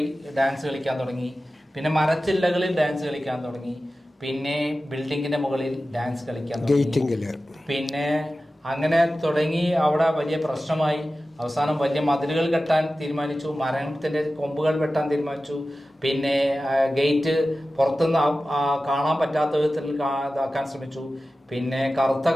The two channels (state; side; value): normal; both; correlation 0.95